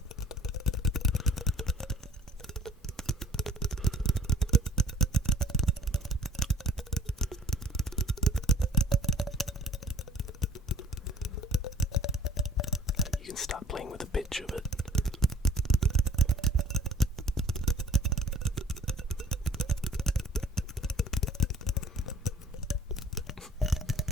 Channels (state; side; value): normal; both; correlation 0.52